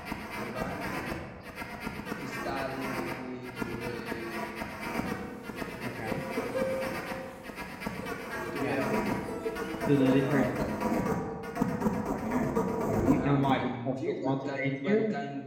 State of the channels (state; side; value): identical; both; correlation 1.00